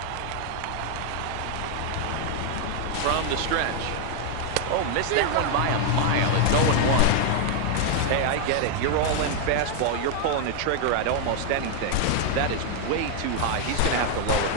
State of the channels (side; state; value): both; different; correlation 0.00